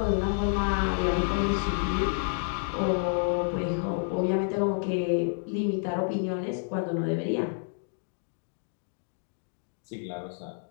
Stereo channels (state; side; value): silent; right; digital silence